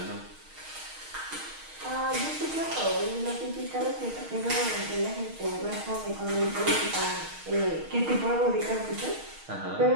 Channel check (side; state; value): left; late; 6.4 ms